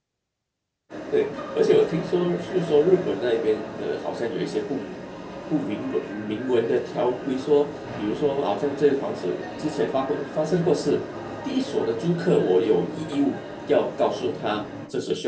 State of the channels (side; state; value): both; identical; correlation 1.00